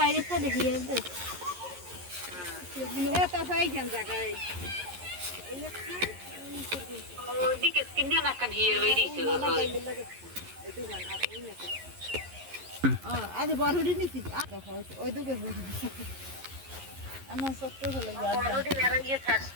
সাইডে হিয়ার দে এটা হয় কেন জায়গায় আজ বড় নিছি ওই দুটো আমার ছোট্ট হলো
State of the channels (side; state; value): left; late; 11 ms